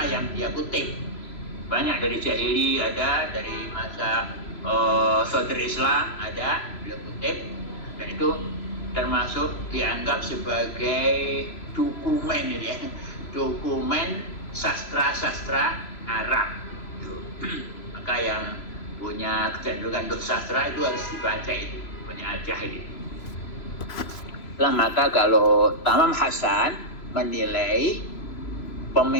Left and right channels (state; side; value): late; right; 3.0 ms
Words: yang dia kutip. Banyak dari Jahili ada, dari masa Sodr Islam ada, dia kutip, dan itu termasuk dianggap sebagai dokumen ya, dokumen sastra-sastra Arab. Maka yang punya kecenderungan untuk sastra itu harus dibaca, itu punya Al-Jahid. Maka kalau Tamam Hasan menilai